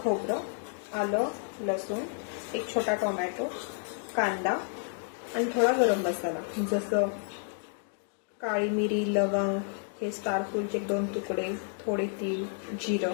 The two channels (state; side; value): silent; right; 57 dB below the other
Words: खोबरं, आलं, लसूण, एक छोटा टोमॅटो, कांदा आणि थोडा गरम मसाला जसं काळी मिरी, लवंग, हे स्टार फूलचे 2 तुकडे, थोडे तीळ,